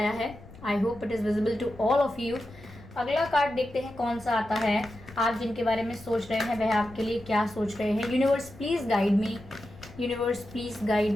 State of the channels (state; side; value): noise; left; rumble, 19 dB below the sound